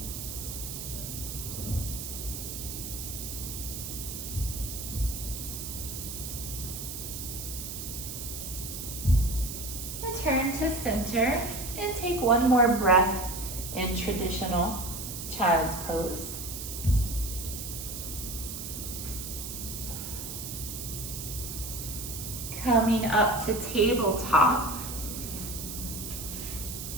Turn to center and take one more breath in traditional child's pose. Coming up to tabletop.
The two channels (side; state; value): right; noise; hiss, 7 dB below the sound